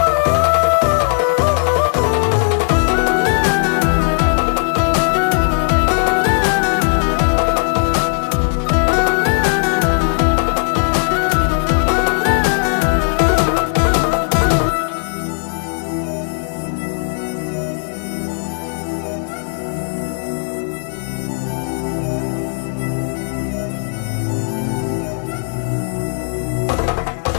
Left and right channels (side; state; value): right; silent; digital silence